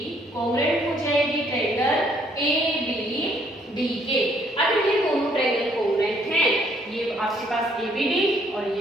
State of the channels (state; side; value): normal; both; correlation 0.66